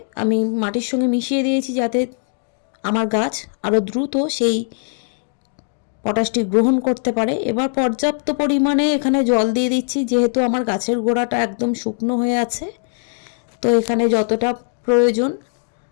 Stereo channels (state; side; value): silent; right; digital silence